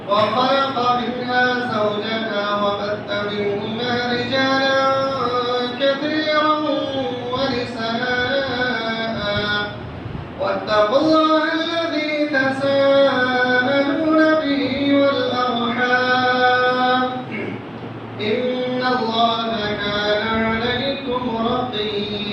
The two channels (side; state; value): both; identical; correlation 1.00